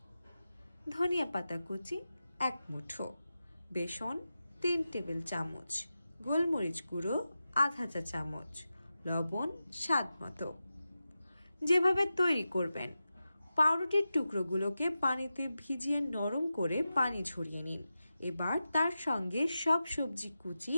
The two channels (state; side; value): inverted; both; correlation -0.92